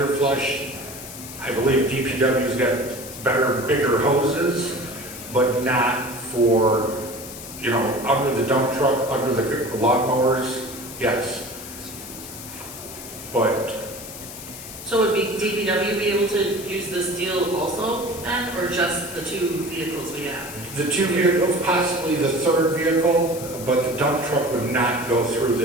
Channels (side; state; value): left; noise; hiss, 12 dB below the sound